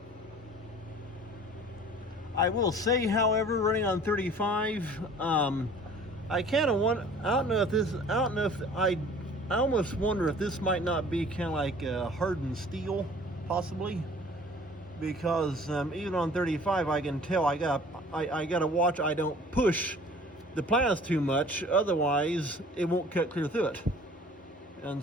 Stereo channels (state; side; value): normal; both; correlation 0.49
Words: I will say, however, running on 35, I kind of want, I don't know if I almost wonder if this might not be kind of like hardened steel, possibly, because even on 35, I can tell I gotta watch I don't push the plants too much, otherwise it won't cut clear through it.